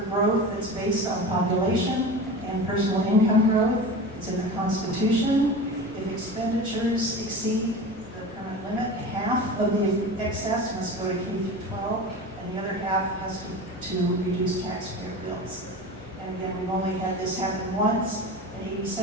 growth that's based on population and personal income growth. It's in the Constitution. If expenditures exceed the current limit, half of the excess must go to K through 12, and the other half has to reduce taxpayer bills. And again, we've only had this happen once in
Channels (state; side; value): normal; both; correlation 0.32